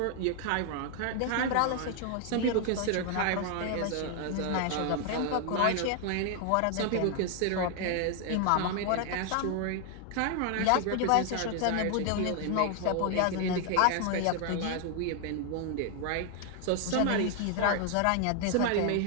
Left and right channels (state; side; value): different; both; correlation 0.00